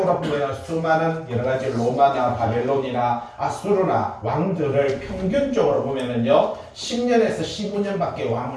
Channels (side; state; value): both; identical; correlation 1.00